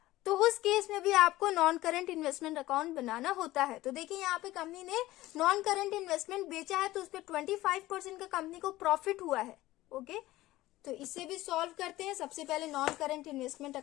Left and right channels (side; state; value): right; quieter; 17.0 dB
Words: तो उस केस में भी आपको नॉन करेंट इन्वेस्टमेंट अकाउंट बनाना होता है। तो देखिए यहाँ पे कंपनी ने नॉन करेंट इन्वेस्टमेंट बेचा है, तो उस पर 25% का कंपनी को प्रॉफिट हुआ है। ओके, तो इसे भी सॉल्व करते हैं। सबसे पहले नॉन करेंट इन्वेस्टमेंट